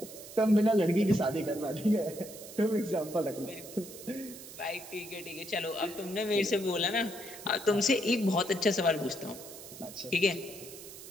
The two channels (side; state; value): right; noise; hiss, 14 dB below the sound